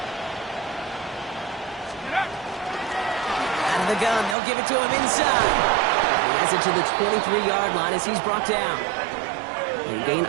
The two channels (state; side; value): drops out; left; at 4.4 s